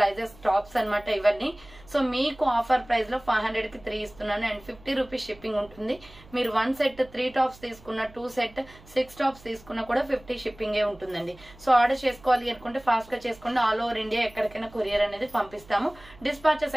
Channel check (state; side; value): noise; right; hum, 23 dB below the sound